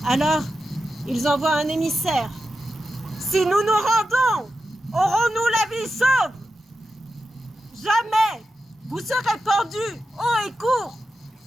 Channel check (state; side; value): normal; both; correlation 0.90